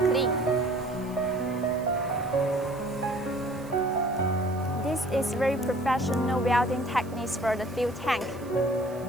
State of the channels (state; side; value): noise; right; hiss, 23 dB below the sound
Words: This is very professional welding techniques for the fuel tank.